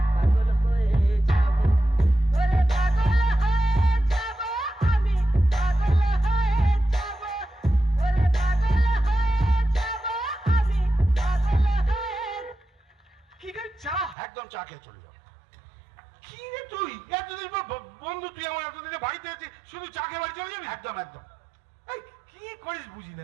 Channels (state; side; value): drops out; left; at 14.2 s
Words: পাগল হয়ে যাব, ওরে পাগল হয়ে যাব আমি, পাগল হয়ে যাব, ওরে পাগল হয়ে যাব আমি, পাগল হয়ে। কি করে চা? একদম চা খেয়ে চলে যাবো। কি রে তুই এতদিন পর বন্ধু, তুই আমার এতদিনে বাড়িতে আছিস, শুধু চা খেয়ে বাড়ি চলে যাবি? একদম এই কি করিস বুঝি না।